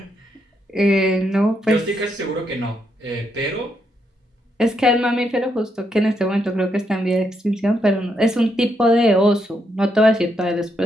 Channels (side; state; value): both; normal; correlation 0.78